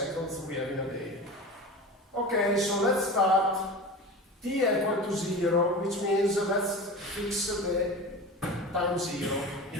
we have in a day. Okay, so let's start. T equal to 0, which means let's fix the time 0,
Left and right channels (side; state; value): both; normal; correlation 0.31